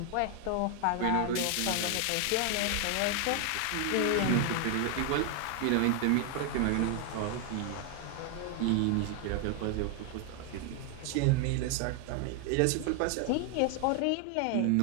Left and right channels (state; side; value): different; both; correlation 0.00